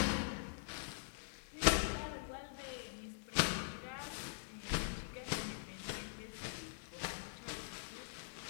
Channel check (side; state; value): right; silent; digital silence